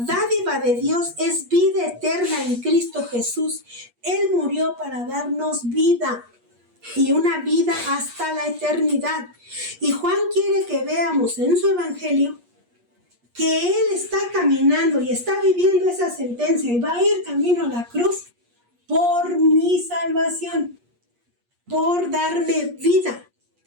dádiva de Dios es vida eterna en Cristo Jesús. Él murió para darnos vida, y una vida hasta la eternidad. Y Juan quiere que veamos en su evangelio que Él está caminando y está viviendo esa sentencia y va a ir camino a la cruz por mi salvación, por darme vida.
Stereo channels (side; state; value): left; late; 8.4 ms